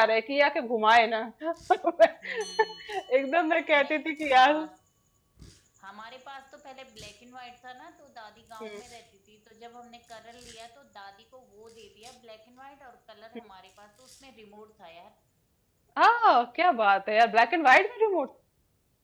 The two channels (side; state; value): both; identical; correlation 1.00